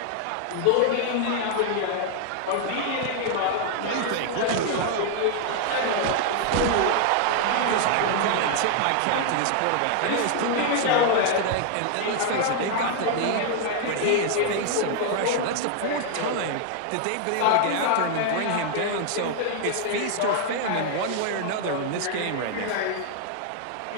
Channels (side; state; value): both; different; correlation 0.00